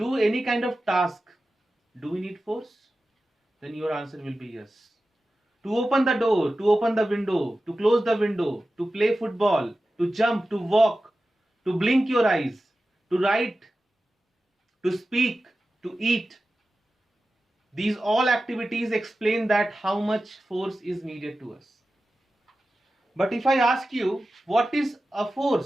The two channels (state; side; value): normal; both; correlation 0.94